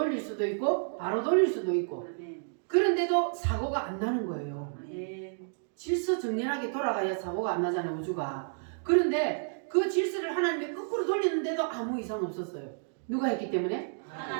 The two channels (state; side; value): silent; left; digital silence